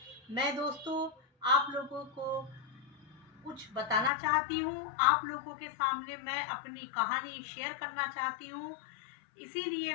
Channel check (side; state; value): right; drops out; at 4.1 s